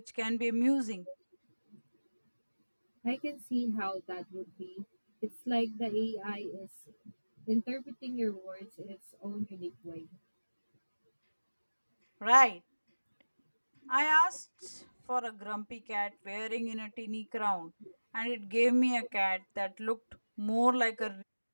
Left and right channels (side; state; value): both; inverted; correlation -1.00